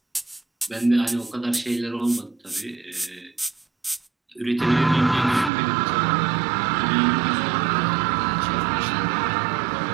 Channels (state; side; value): drops out; left; at 5.5 s